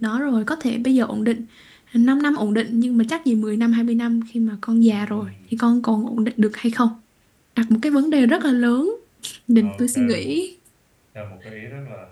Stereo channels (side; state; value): both; identical; correlation 1.00